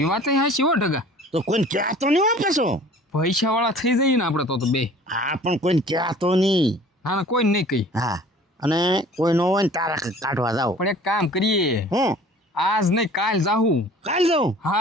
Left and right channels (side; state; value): both; normal; correlation 0.48